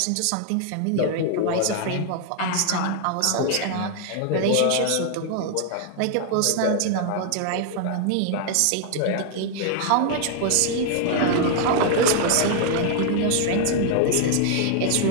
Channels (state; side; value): different; both; correlation 0.00